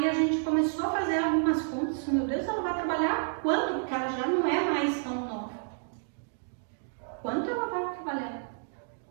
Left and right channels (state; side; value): silent; left; digital silence